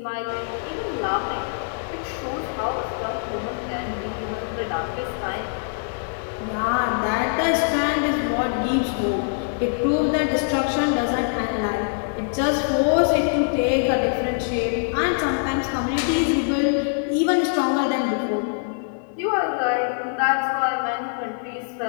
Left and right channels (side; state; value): right; silent; 57 dB below the other